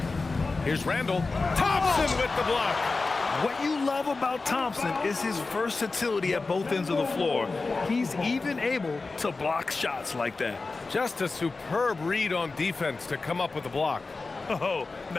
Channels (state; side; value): quieter; right; 3.8 dB